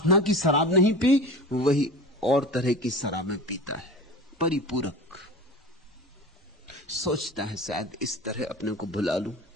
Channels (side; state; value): both; normal; correlation 0.34